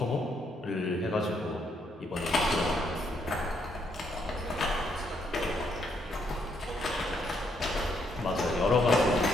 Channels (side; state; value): both; normal; correlation 0.73